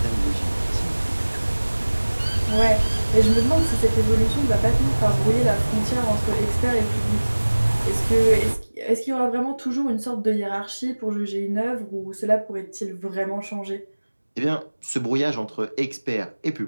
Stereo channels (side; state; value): both; inverted; correlation -1.00